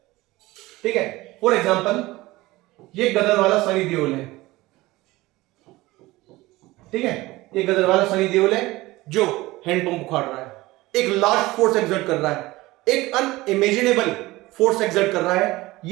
ठीक है, फॉर एग्जांपल ये गदर वाला सनी देओल है। ठीक है, ये गदर वाला सनी देओल है जो हैंडपंप उखाड़ रहा है, एक लार्ज फोर्स एक्सर्ट कर रहा है, एक अनइमेजिनेबल फोर्स एक्सर्ट कर रहा है।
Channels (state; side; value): quieter; left; 19.4 dB